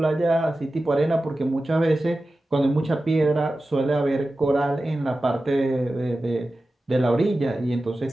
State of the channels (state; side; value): normal; both; correlation 0.94